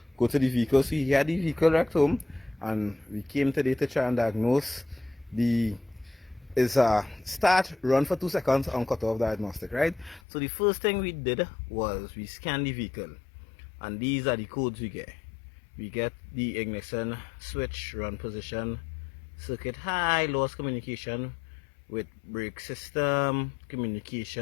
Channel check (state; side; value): drops out; right; at 10.2 s